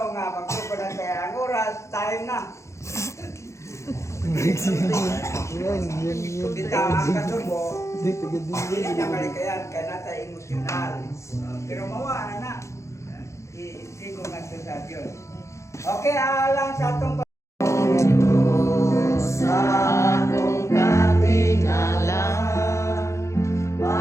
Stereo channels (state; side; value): late; right; 0.14 ms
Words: nga, magpupunan kaya ang oras, time na. Kita ang kasubo, hindi na malikayan, kaya natin emosyonal. Pero mawaan na, hindi ko nga ito sa Diyos. Okay, alang sa itong